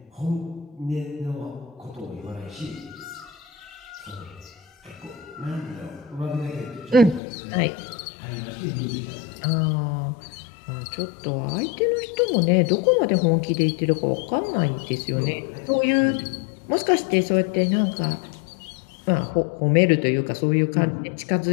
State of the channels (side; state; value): right; drops out; at 7.2 s